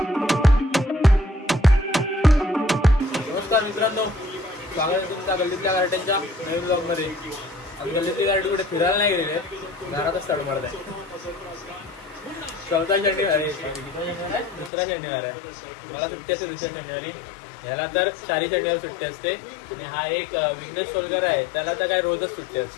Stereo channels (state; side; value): drops out; right; at 14.7 s